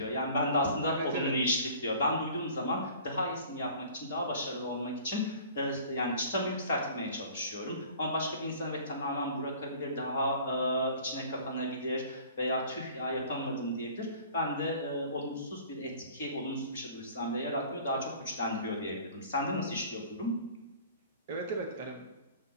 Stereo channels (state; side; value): inverted; both; correlation -0.47